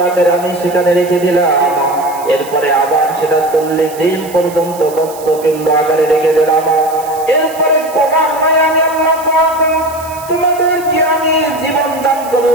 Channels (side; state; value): right; noise; hiss, 17 dB below the sound